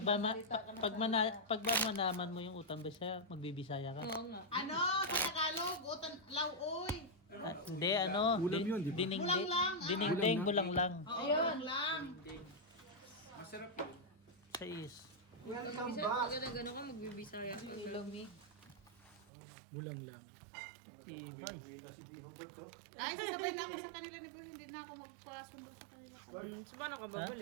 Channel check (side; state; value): left; drops out; at 19.3 s